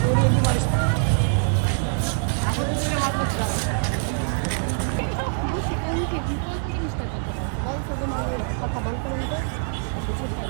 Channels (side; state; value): left; silent; digital silence